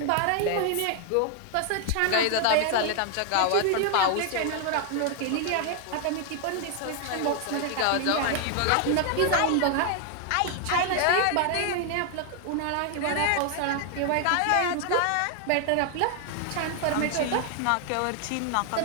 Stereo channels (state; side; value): different; both; correlation 0.00